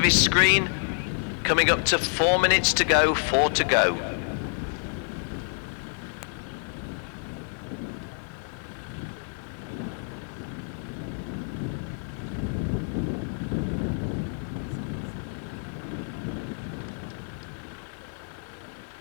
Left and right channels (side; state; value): right; silent; 59 dB below the other